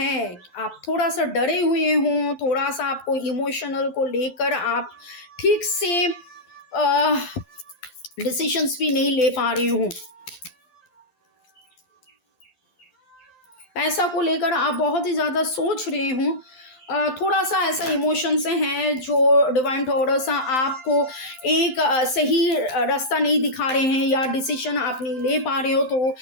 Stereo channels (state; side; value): late; right; 12 ms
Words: आप थोड़ा सा डरे हुए हों, थोड़ा सा आपको इमोशनल को लेकर आप ठीक से डिसीजंस भी नहीं ले पा रहे हो। पैसा को लेकर आप बहुत ही ज़्यादा सोच रहे हो। थोड़ा सा ऐसा इमोशन से हैं जो डिवाइन टॉरस आपको एक सही रास्ता नहीं दिखा रहे हैं या डिसीजन आप नहीं ले पा रहे हो।